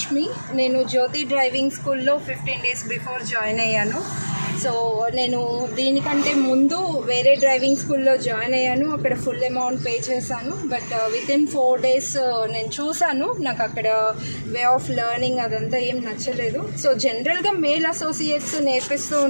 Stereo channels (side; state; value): both; inverted; correlation -1.00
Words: నేను జ్యోతి డ్రైవింగ్ స్కూల్లో 15 days బిఫోర్ జాయిన్ అయ్యాను. సో నేను దీనికంటే ముందు వేరే డ్రైవింగ్ స్కూల్లో జాయిన్ అయ్యాను. అక్కడ ఫుల్ అమౌంట్ పే చేశాను. బట్ వితిన్ 4 days నేను చూశాను, నాకు అక్కడ వే ఆఫ్ లెర్నింగ్ అదంతా ఏం నచ్చలేదు. సో జనరల్గా మేల్ అసోసియేట్స్ నేర్పిస్తూ